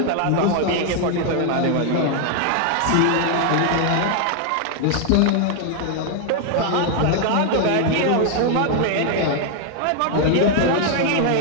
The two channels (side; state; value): both; different; correlation 0.00